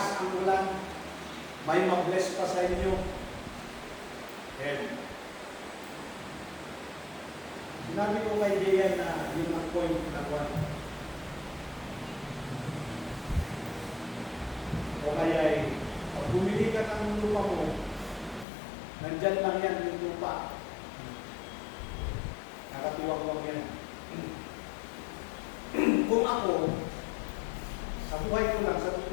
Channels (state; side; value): drops out; right; at 18.4 s